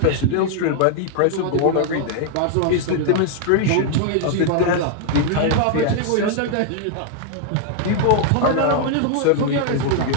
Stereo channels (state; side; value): different; both; correlation 0.00